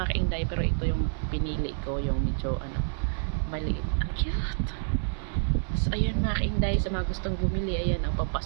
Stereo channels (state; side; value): silent; left; 59 dB below the other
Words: kainday, pero ito yung pinili ko, yung medyo maliit. Ang cute. So, ayan mga kainday, sa mga gustong bumili, ayan ang